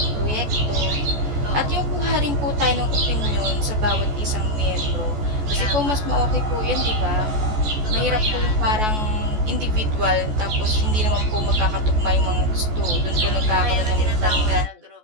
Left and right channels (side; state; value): left; late; 14 ms